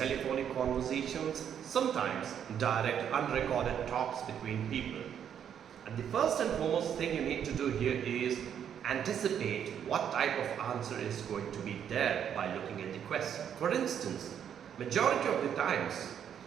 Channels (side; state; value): left; quieter; 8.8 dB